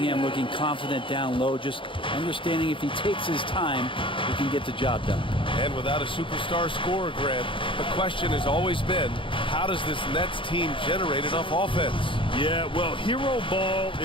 looking confident down low, just understanding if he takes his time, he can get the job done. And without a superstar scorer, Grant, the question has always been, how does this Nets team generate enough offense? Yeah, well, hero ball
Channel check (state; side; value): late; right; 0.25 ms